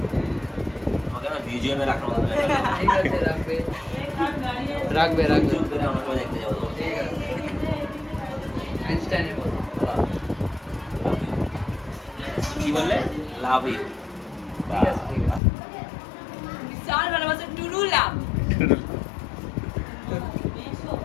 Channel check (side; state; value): right; drops out; at 15.4 s